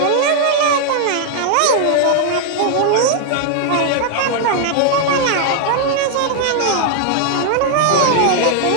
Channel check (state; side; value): different; both; correlation -0.01